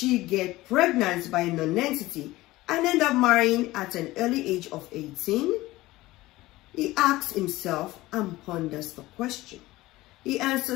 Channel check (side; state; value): right; quieter; 18.2 dB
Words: get pregnant by a non-entity and end up marrying at an early age of 18? He asks himself and ponders the question. He